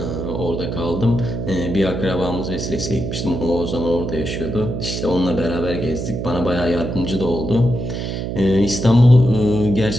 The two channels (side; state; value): right; noise; hum, 4 dB below the sound